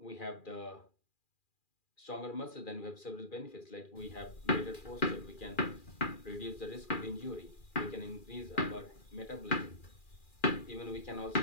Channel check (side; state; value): right; late; 2.4 ms